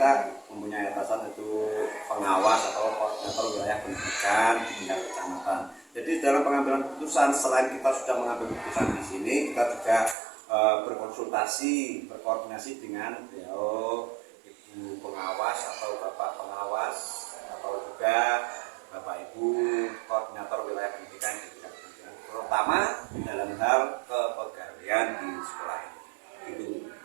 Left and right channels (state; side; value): drops out; left; at 10.2 s